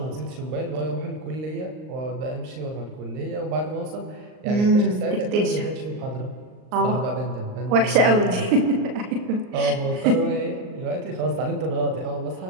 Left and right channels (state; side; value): late; left; 39 ms